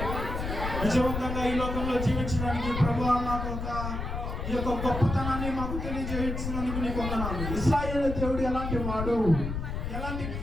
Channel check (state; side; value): noise; left; rumble, 4 dB below the sound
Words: విజయవంతంగా ఈ లోకంలో జీవించడానికి ప్రభువా నాకు ఈ యొక్క గొప్పతనాన్ని మాకు తెలియజేసినందుకు నీకు వందనాలు. ఇశ్రాయేలు దేవుడు ఎలాంటి వాడు, ఎలాంటి